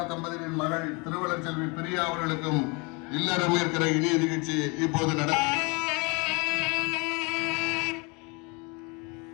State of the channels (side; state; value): right; quieter; 29.7 dB